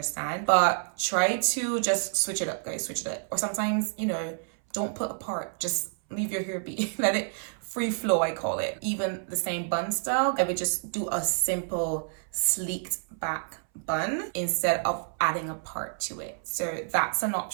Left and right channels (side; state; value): left; silent; 59 dB below the other